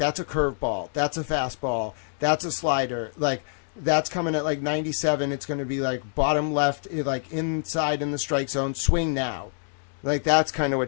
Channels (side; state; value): right; silent; digital silence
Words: a curveball, that's a fastball, that's a slider, like that's coming at like 97, it's going to be like bottom left, like inside in the strike zone, swing now. Like that's kind of